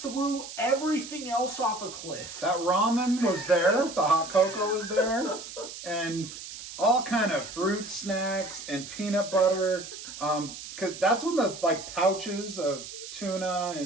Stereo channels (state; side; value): noise; right; hiss, 12 dB below the sound